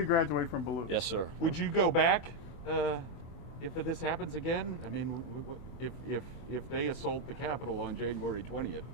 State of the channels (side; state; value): right; late; 24 ms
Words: graduate from Ballou. Yes, sir. Would you go back if this happens again? I mean, if they assault the Capitol on January 20th,